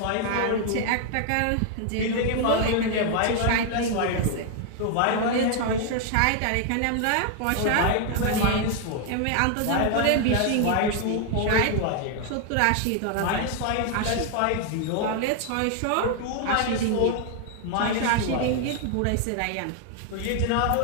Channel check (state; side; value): different; both; correlation 0.00